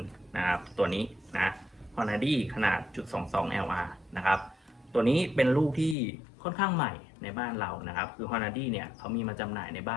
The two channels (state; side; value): drops out; right; at 6.0 s